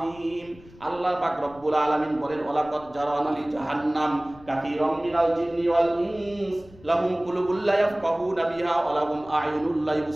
আল্লাহ পাক রব্বুল আলামিন বলেন, ওয়ালাকাদ জারানা লি জাহান্নাম কাসীরাম মিনাল জিন্নি ওয়াল ইনস লাহুম কুলুবুল লা ইয়াফকাহুনা বিহা ওয়া লাহুম আ'য়ুনুল লা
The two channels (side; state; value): left; noise; rumble, 23 dB below the sound